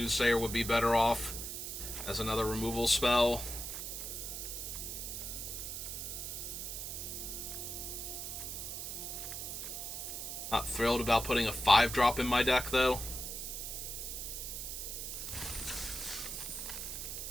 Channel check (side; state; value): right; noise; hiss, 5 dB below the sound